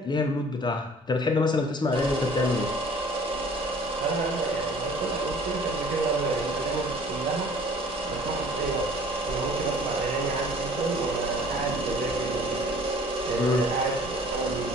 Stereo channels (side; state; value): both; normal; correlation 0.51